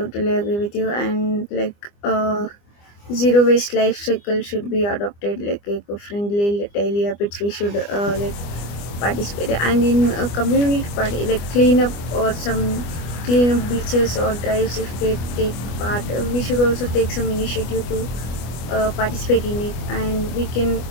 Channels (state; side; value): late; right; 25 ms